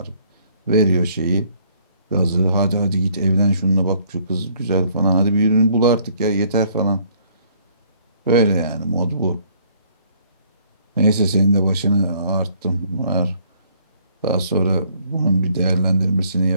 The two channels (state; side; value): inverted; both; correlation -0.63